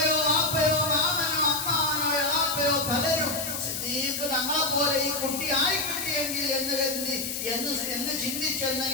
വാപ്പയോ മാമനോ അമ്മാവനോ എളാപ്പയോ പലരും സിദ്ദീഖ് തങ്ങളെ പോലെ ഈ കുട്ടി ആയി കിട്ടിയെങ്കിൽ എന്ന് ചിന്തിച്ചെന്ന്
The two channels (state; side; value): noise; left; hiss, 4 dB below the sound